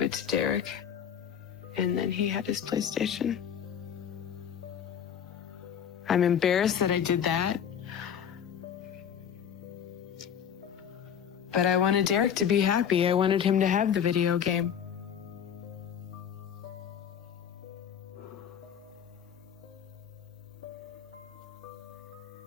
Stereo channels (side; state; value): right; quieter; 8.4 dB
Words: it to Derek. And then he had his PlayStation. I'm embarrassed that I did that. But I wanted Derek to be happy. I wanted him to have the video game.